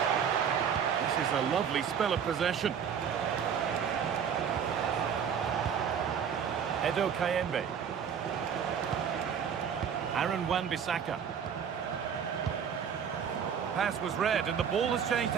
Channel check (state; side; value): quieter; left; 7.6 dB